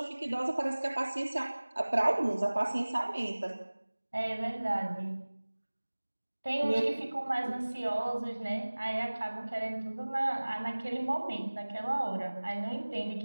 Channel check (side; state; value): both; inverted; correlation -1.00